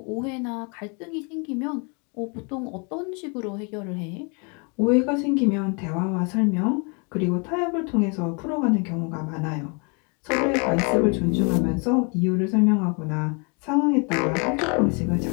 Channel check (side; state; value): right; quieter; 34.5 dB